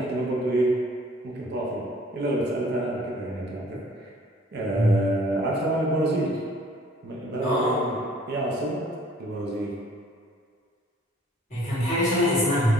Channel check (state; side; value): normal; both; correlation 0.55